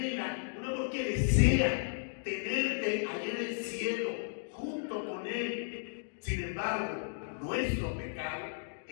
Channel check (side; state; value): right; silent; digital silence